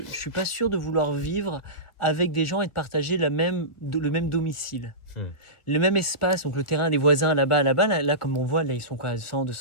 je suis pas sûr de vouloir vivre avec des gens et de partager le même domicile. Le même espace, donc le terrain des voisins là-bas, là, comme on voit, là ils sont quoi, à 100,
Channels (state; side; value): late; right; 1.4 ms